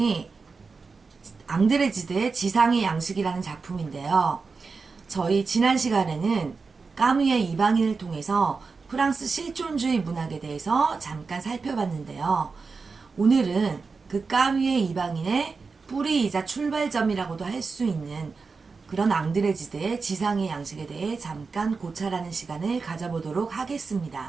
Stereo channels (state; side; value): quieter; left; 4.6 dB